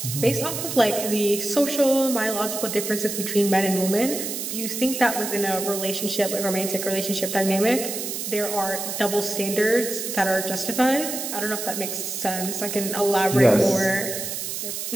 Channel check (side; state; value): right; noise; hiss, 5 dB below the sound